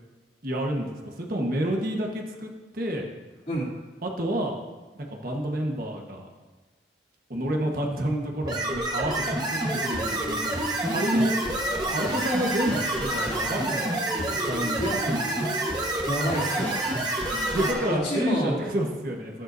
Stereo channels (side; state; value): both; normal; correlation 0.57